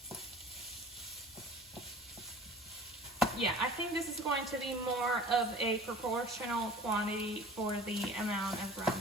Yeah, I think this is going to be more of a proportional quantity for the amount of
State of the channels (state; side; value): normal; both; correlation 0.44